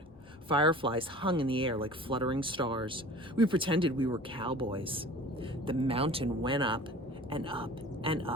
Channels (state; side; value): normal; both; correlation 0.43